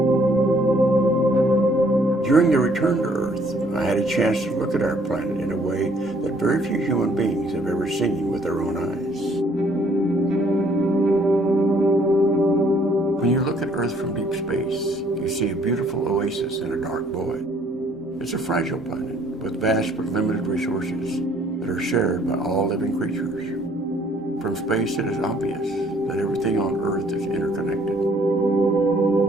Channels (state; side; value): normal; both; correlation 0.62